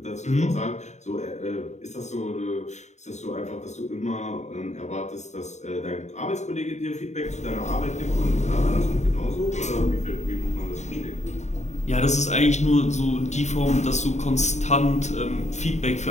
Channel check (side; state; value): right; late; 0.34 ms